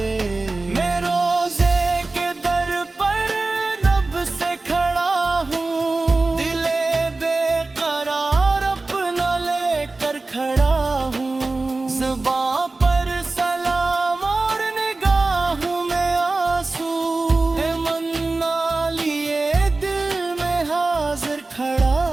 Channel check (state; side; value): quieter; left; 3.4 dB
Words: میں روزے کے در پر رب سے کھڑا ہوں، دل بے قرار اپنا لے کر کھڑا ہوں، زباں پر سلام اور نگاہوں میں آنسو، ہے منا لیے دل میں حاضر